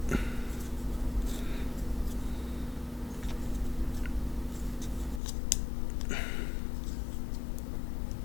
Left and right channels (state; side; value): drops out; right; at 5.2 s